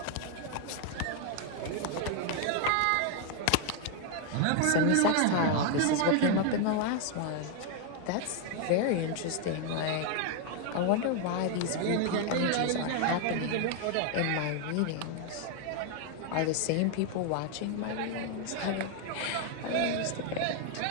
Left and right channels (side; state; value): both; different; correlation 0.01